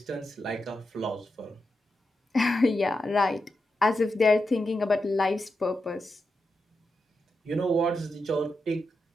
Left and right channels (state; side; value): normal; both; correlation 0.87